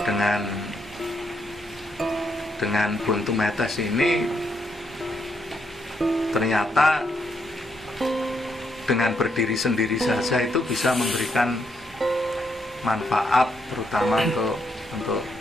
buntu metes ini ternyata dengan berdiri sendiri saja itu bisa memberikan manfaat, terutama untuk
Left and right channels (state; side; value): normal; both; correlation 0.77